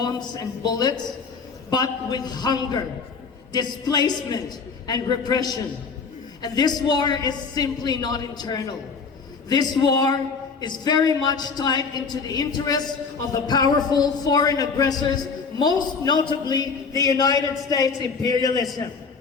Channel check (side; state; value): right; quieter; 5.1 dB